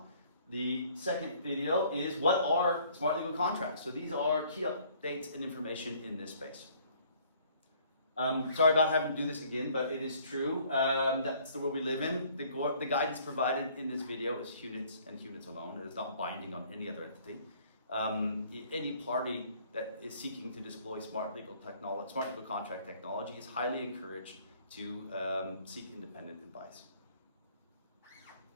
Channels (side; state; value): both; inverted; correlation -0.59